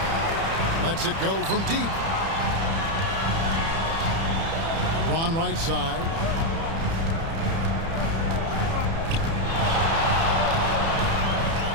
Lets it go from deep. LeBron right side.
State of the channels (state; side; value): late; left; 30 ms